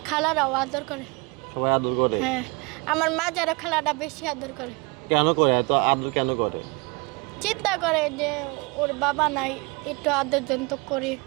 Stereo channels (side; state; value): left; quieter; 28.4 dB